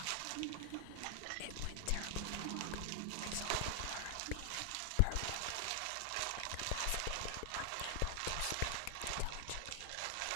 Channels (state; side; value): different; both; correlation 0.00